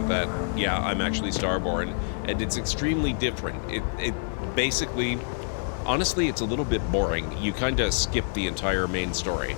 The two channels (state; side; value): silent; right; 55 dB below the other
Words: that, yeah, I'm actually Starborn, and it's extremely different. It basically, honestly, it's a little bit boring. You kind of skip the entire main story,